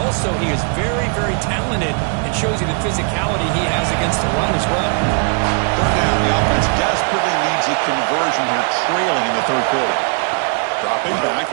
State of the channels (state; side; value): quieter; left; 38.8 dB